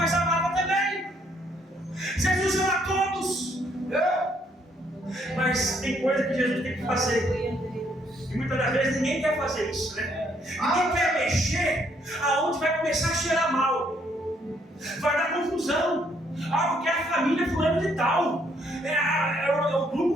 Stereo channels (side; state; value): both; normal; correlation 0.69